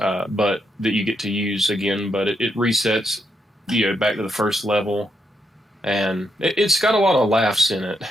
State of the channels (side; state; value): both; normal; correlation 0.80